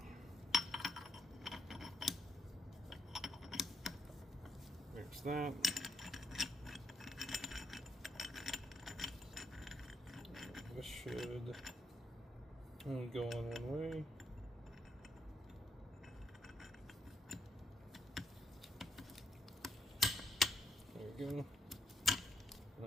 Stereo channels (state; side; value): normal; both; correlation 0.75